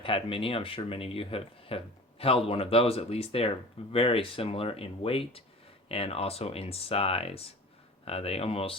mini, I'm sure many of you have held one of those at least. They are very similar in weight and also in size. They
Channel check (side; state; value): both; normal; correlation 0.39